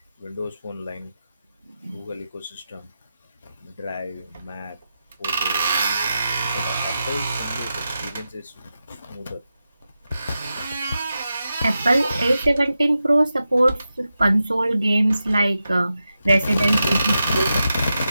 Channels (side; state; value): both; inverted; correlation -0.90